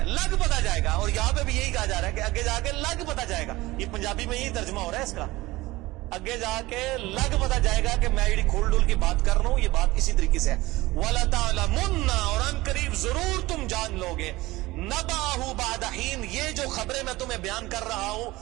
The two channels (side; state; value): left; quieter; 19.4 dB